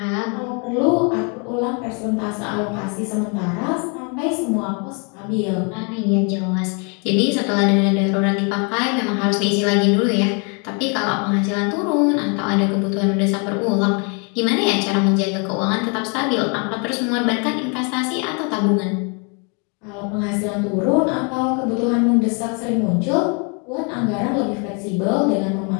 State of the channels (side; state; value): right; quieter; 35.5 dB